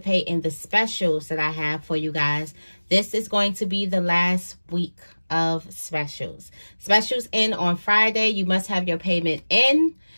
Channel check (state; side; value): inverted; both; correlation -1.00